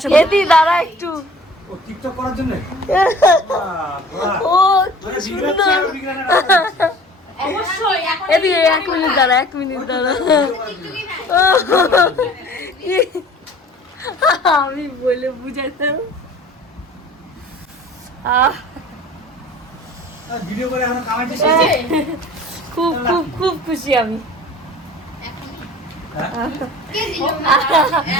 করি এদি দাঁড়া একটু। ও টিকটক করার জন্য ও কি সুন্দর। এদি 1 মিনিট দাঁড়া, 1 মিনিট দাঁড়া। আমি বলে বুঝাইতাম। ভিডিও করে এখন কামাইতে খুব খুব খুব খুশি আমি। কে দিল?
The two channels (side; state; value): both; normal; correlation 0.45